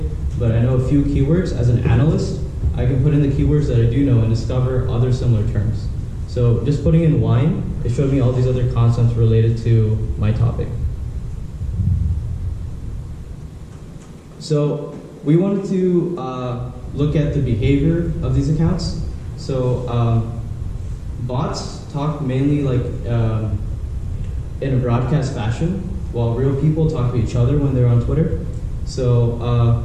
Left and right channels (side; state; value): both; identical; correlation 1.00